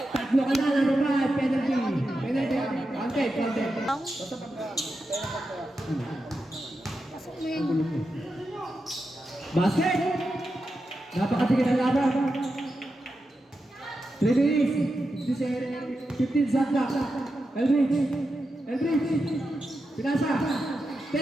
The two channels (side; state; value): both; normal; correlation 0.89